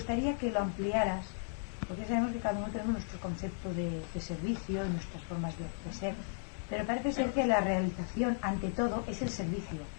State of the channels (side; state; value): right; silent; 54 dB below the other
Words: que lo ampliaras, porque sabemos que cada uno tenemos nuestro concepto de servicio y nuestras formas de ser, pero parece ser que la realización ante todo es el servicio.